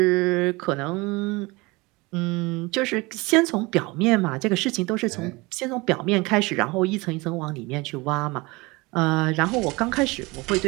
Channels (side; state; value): left; quieter; 24.1 dB